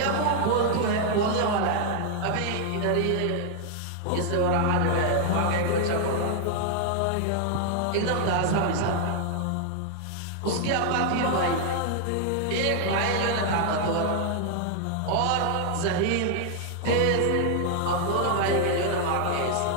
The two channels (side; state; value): both; different; correlation 0.00